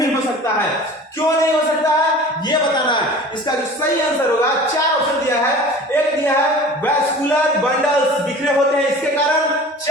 हो सकता है। क्यों नहीं हो सकता है ये बताना है। इसका जो सही आंसर होगा, चार ऑप्शन दिया है। एक दिया है वैस्कुलर बंडल्स बिखरे होते हैं इसके कारण,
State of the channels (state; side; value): normal; both; correlation 0.41